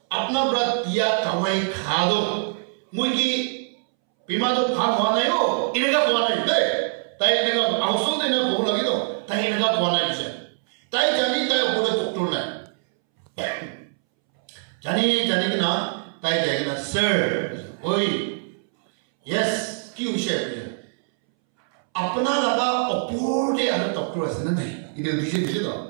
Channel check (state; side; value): silent; left; 63 dB below the other